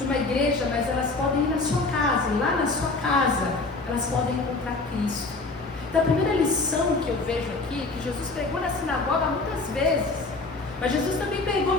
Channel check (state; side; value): quieter; right; 3.5 dB